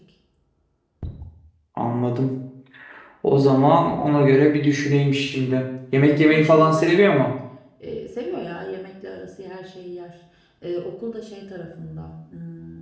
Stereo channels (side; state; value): both; identical; correlation 1.00